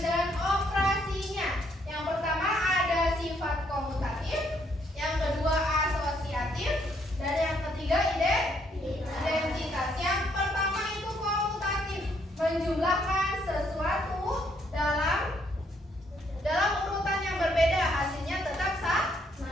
dan operasinya. Yang pertama ada sifat komutatif, yang kedua asosiatif, dan yang ketiga identitas. Yang pertama itu komutatif, menjumlahkan sesuatu dalam urutan yang berbeda, hasilnya tetap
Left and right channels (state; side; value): normal; both; correlation 0.71